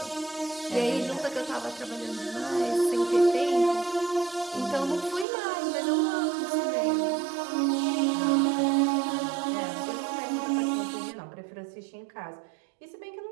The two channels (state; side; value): drops out; left; at 5.2 s